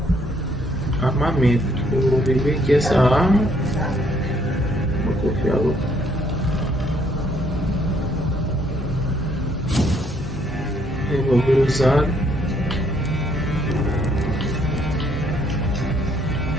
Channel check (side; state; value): both; normal; correlation 0.68